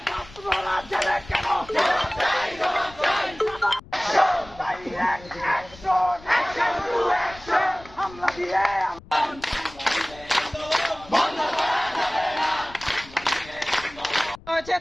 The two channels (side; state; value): left; noise; rumble, 20 dB below the sound